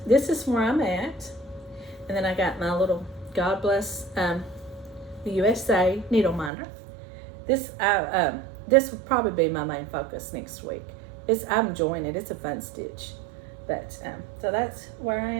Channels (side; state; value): left; drops out; at 6.5 s